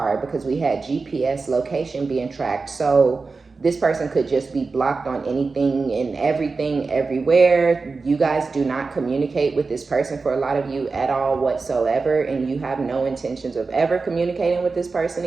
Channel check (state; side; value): quieter; left; 4.2 dB